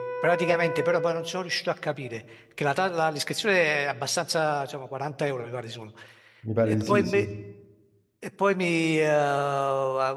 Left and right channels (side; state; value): both; identical; correlation 1.00